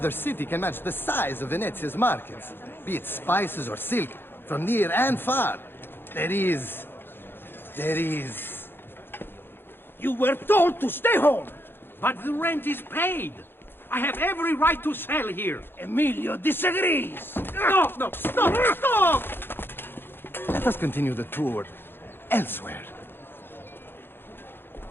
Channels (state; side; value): late; right; 0.10 ms